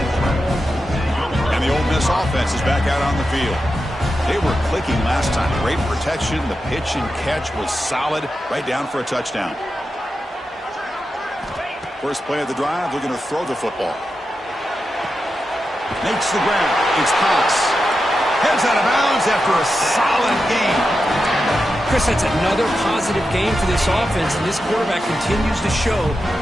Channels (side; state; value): both; normal; correlation 0.89